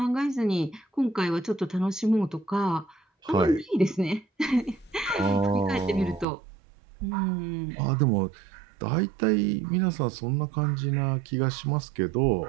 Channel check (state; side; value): drops out; left; at 6.2 s